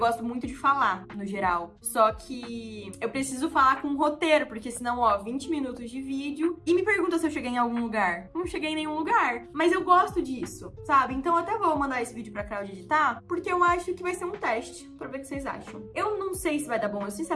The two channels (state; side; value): identical; both; correlation 1.00